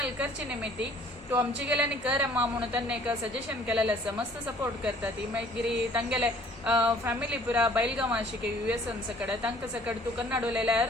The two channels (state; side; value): normal; both; correlation 0.56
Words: करची निमित्ती तू आमची गेल्यानी कर अम्मा म्हणून त्यांनी एक सजेशन केलेलें आसा मस्त सपोर्ट करता ती मागीर तांगेले फॅमिली पुरा बैलगांव आशिके US सकड तांकां सकड तू कन्नड उलयल्यार